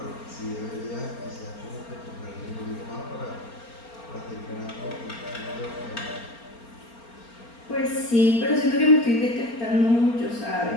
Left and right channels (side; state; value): right; late; 4.3 ms